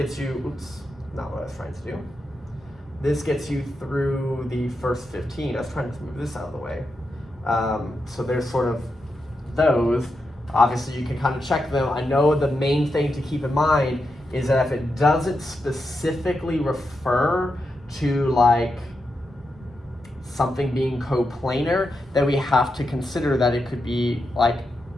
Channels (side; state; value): both; normal; correlation 0.86